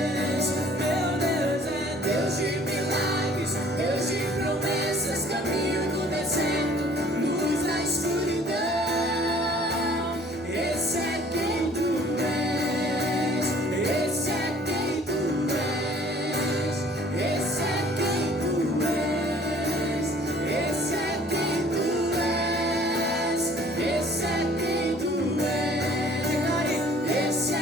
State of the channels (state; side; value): normal; both; correlation 0.54